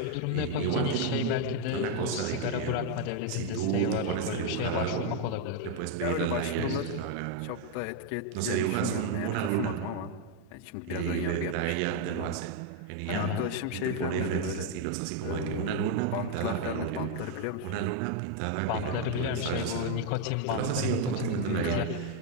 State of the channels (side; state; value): both; different; correlation 0.01